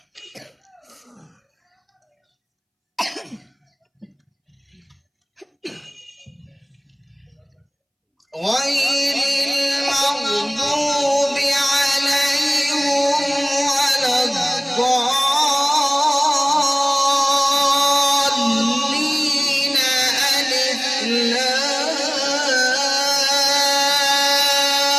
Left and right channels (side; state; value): both; identical; correlation 1.00